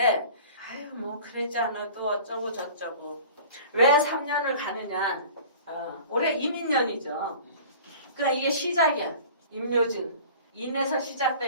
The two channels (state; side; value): inverted; both; correlation -0.43